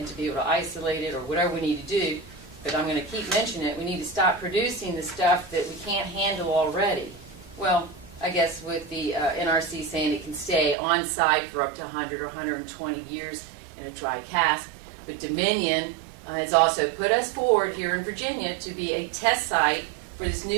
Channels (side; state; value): left; drops out; at 10.8 s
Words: to be able to isolate it or whatever we need to do. But I'm going to keep mentioning it. We need to stop producing the stuff that we can't handle already. Well, I guess with the NRC saying it can stay on site for up to 100 or 120 years in a dry cask. But Dominion has also put us forward here in Virginia to be a test site for this